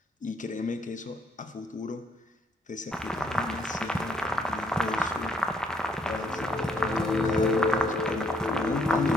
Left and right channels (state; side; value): normal; both; correlation 0.69